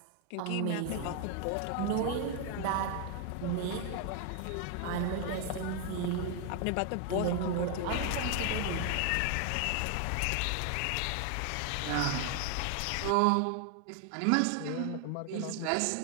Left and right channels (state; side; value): different; both; correlation 0.00